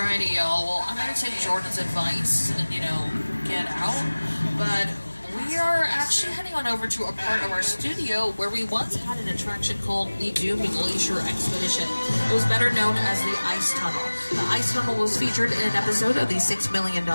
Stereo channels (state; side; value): inverted; both; correlation -1.00